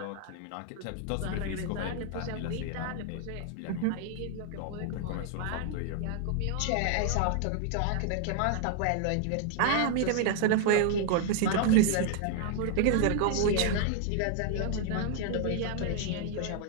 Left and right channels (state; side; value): different; both; correlation 0.00